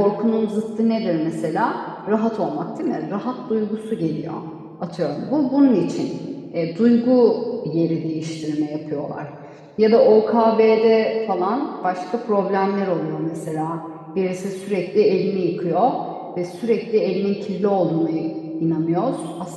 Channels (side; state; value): both; identical; correlation 1.00